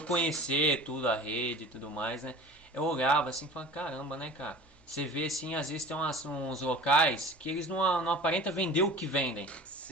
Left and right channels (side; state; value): both; normal; correlation 0.40